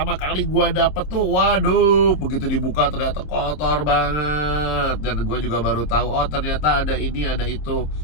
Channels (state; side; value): late; right; 27 ms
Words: kali gua dapet tuh, waduh, begitu dibuka ternyata kotor banget. Dan gua juga baru tahu, oh ternyata ada ini, ada itu.